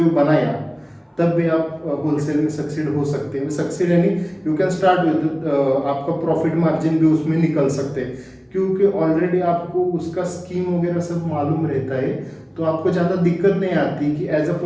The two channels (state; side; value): identical; both; correlation 1.00